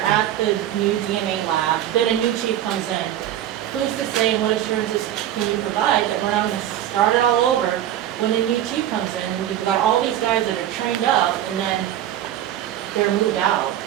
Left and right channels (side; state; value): left; quieter; 11.8 dB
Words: at the new DNA lab, then a new chief comes in. Who's to say, and what assurances can you provide that we're not going to start it all over when a new chief comes in? You've got all these guys that are trained up, and then they're moved out.